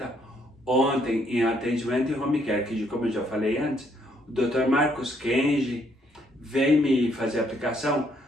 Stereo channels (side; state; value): both; normal; correlation 0.70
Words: ontem em atendimento em home care, que como eu já falei antes, o Dr. Marcos Kenji vem me fazer a aplicação,